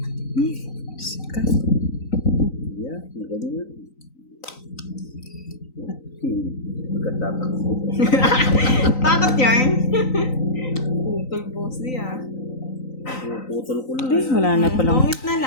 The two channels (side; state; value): right; late; 3.9 ms